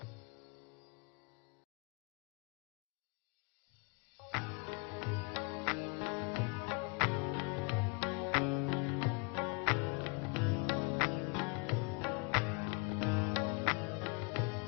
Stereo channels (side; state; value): right; quieter; 32.3 dB